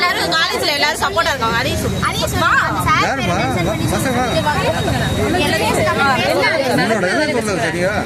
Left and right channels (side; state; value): both; identical; correlation 1.00